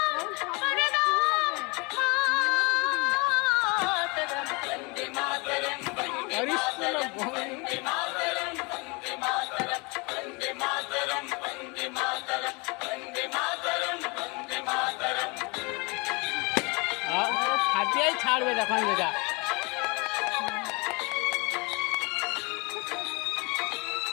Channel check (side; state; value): right; quieter; 28.8 dB